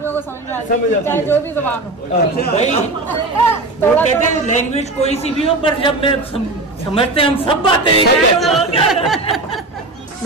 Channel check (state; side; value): quieter; left; 3.0 dB